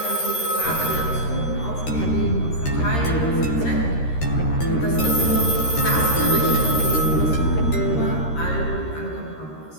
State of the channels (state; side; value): late; right; 13 ms